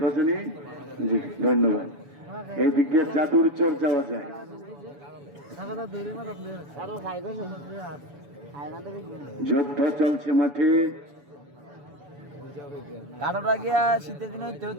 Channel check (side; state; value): left; late; 7.0 ms